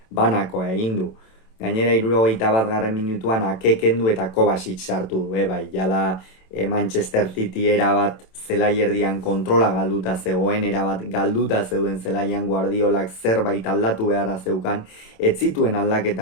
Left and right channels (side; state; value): right; late; 27 ms